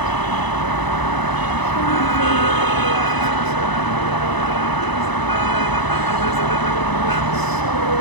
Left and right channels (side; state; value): right; late; 1.0 ms